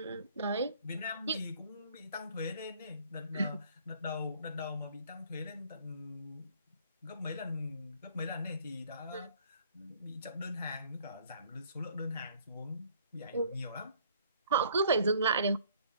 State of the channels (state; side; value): inverted; both; correlation -0.57